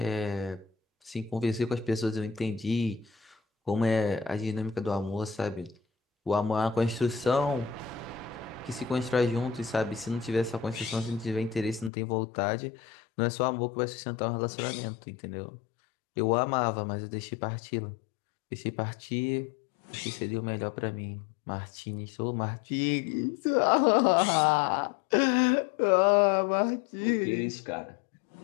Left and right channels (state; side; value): drops out; right; at 11.9 s